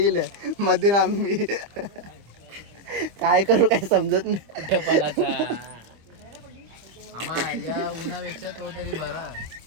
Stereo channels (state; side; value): late; left; 25 ms